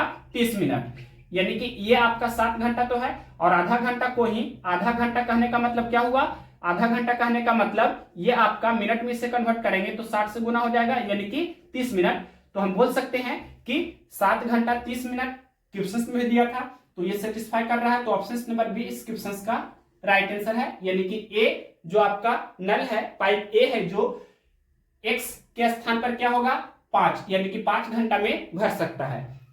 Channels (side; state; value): both; identical; correlation 1.00